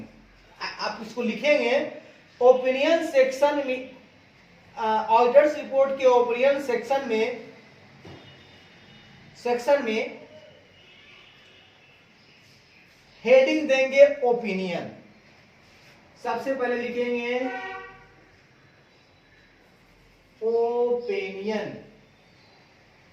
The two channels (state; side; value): identical; both; correlation 1.00